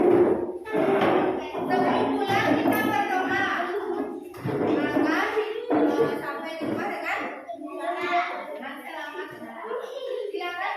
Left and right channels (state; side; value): identical; both; correlation 1.00